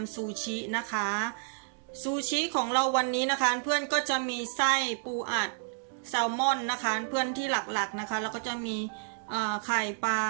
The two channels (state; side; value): silent; left; digital silence